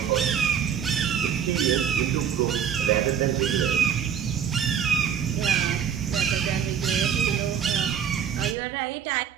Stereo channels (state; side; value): quieter; left; 8.1 dB